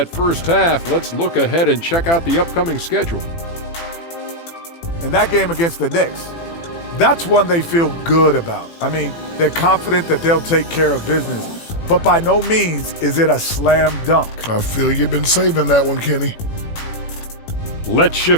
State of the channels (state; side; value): late; right; 18 ms